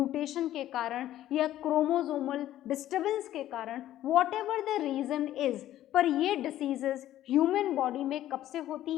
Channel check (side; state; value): right; quieter; 13.1 dB